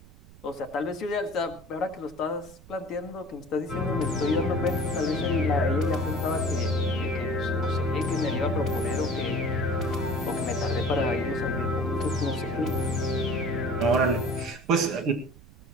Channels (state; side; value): noise; right; rumble, 21 dB below the sound